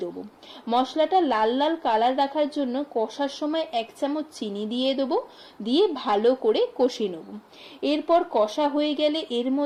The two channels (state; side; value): identical; both; correlation 1.00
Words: দেবো। মশলাটা লাল লাল কালার রাখার জন্য কষার সময় 1 চামচ চিনি দিয়ে দেবো, দিয়ে ভালো করে কষিয়ে নেব। এরপর কষা হয়ে গেলে এর